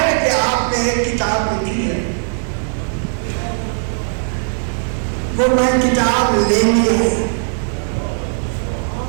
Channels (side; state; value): left; silent; 67 dB below the other